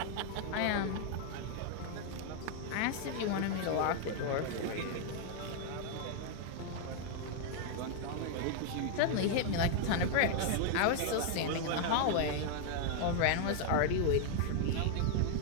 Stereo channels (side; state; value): both; different; correlation 0.00